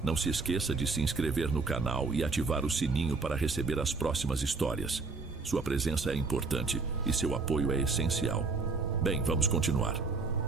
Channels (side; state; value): left; quieter; 4.0 dB